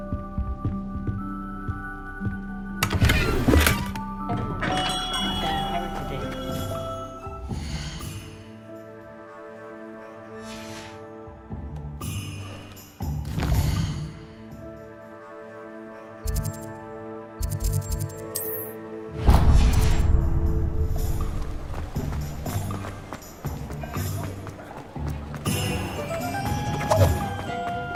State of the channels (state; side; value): identical; both; correlation 1.00